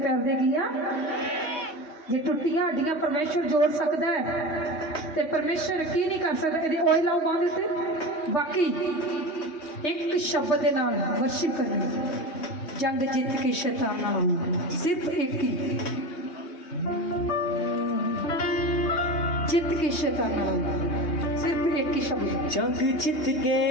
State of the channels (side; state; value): right; late; 3.2 ms